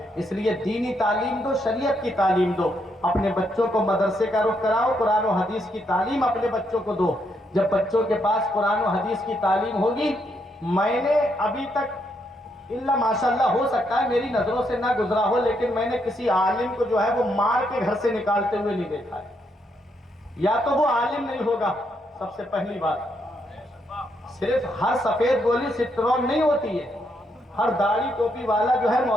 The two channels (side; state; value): both; normal; correlation 0.77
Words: اس لیے دینی تعلیم دو، شریعت کی تعلیم دو۔ اپنے بچوں کو مدرسے کا رخ کراؤ، قرآن و حدیث کی تعلیم اپنے بچوں کو دو۔ جب بچوں کے پاس قرآن و حدیث کی تعلیم ہوگی، میں نے ابھی تک اللہ ماشاءاللہ ہو سکتا ہے میری نظروں سے نہ گزرا ہو، لیکن میں نے کسی عالم کو جو ہے وہ مار کے گھر سے نکالتے ہوئے نہیں دیکھا ہے۔ یا تو وہ عالم نہیں ہوگا، سب سے پہلی بات۔ صرف ہر سفید گولی سٹرون نہیں ہوتی ہے، ہر داڑھی ٹوپی والا جو ہے